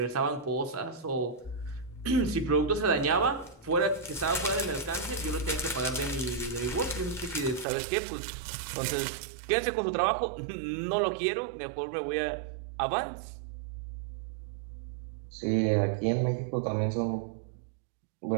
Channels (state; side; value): drops out; left; at 7.7 s